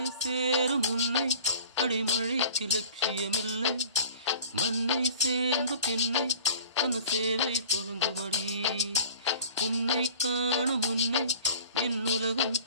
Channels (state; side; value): inverted; both; correlation -0.45